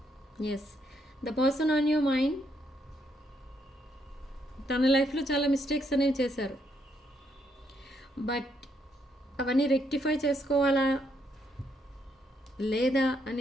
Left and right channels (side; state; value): both; normal; correlation 0.75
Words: Yes, the person on your mind తన లైఫ్లో చాలా mistakes అనేవి చేశారు. But అవన్నీ రెక్టిఫై చేసుకోవాలా లేదా